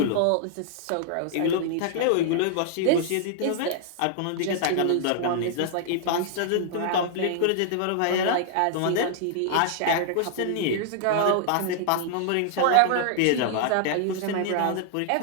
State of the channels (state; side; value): different; both; correlation -0.01